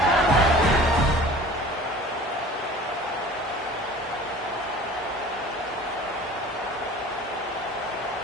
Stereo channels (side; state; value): both; normal; correlation 0.44